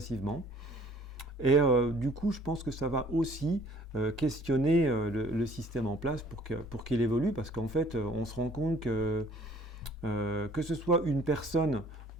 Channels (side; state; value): both; normal; correlation 0.56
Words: Et du coup, je pense que ça va aussi questionner le système en place pour qu'il évolue, parce qu'en fait, on se rend compte que ce soit une personne